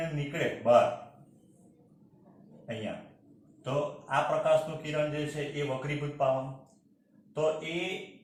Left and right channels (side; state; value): both; identical; correlation 1.00